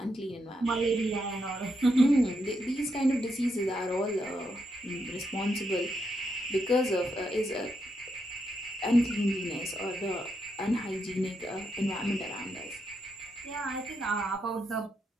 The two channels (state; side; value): normal; both; correlation 0.81